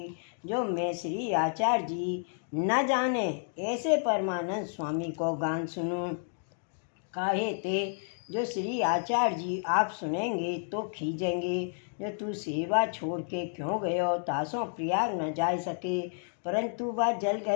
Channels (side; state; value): right; silent; digital silence